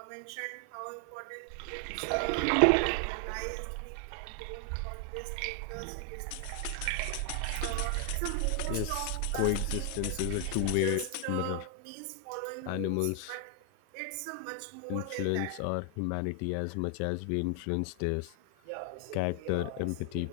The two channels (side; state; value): both; different; correlation 0.00